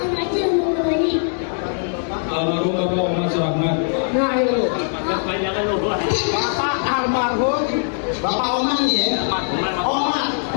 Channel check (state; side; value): silent; right; digital silence